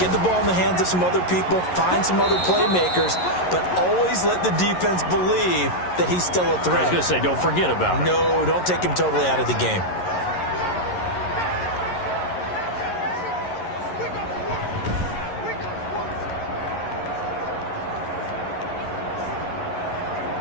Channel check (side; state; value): right; late; 11 ms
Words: the ball in the hands of some other people, find some other playmakers, but always let the defense believe that he's still a threat. I was going to say, don't forget about it. No, don't take him totally out of the game.